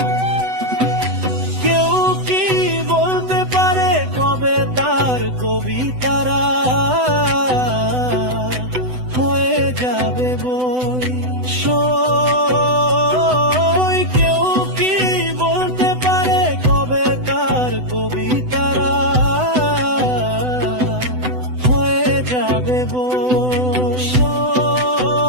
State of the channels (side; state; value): left; late; 8.0 ms